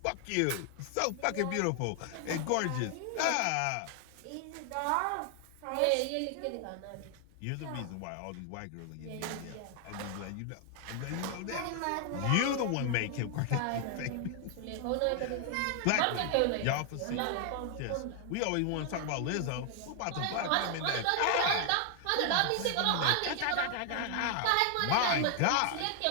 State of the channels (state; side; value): different; both; correlation 0.00